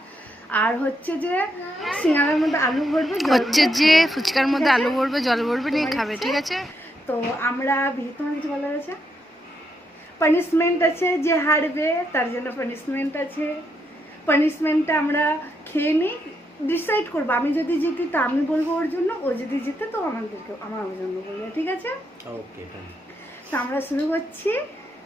আর হচ্ছে যে সিঙ্গাড়ার মধ্যে আলু ভরবে, হচ্ছে যে ফুচকার মধ্যে আলু ভরবে, জল ভরবে, নিয়ে খাবে, ঠিক আছে। তো আমরা তোমার কিছু বলার আছে? পানিশমেন্ট আছে, যে হারবে তার জন্য পানিশমেন্ট আছে। পানিশমেন্টটা আমরা খেয়ে নিই, ডিসাইড করবো। আমি যদি জিতি তো আমি বলবো ওর জন্য, ও যদি জিতে তো আমার জন্য বলবে, ঠিক আছে। ওকে, তো আমরা শুরু করছি।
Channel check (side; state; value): both; normal; correlation 0.79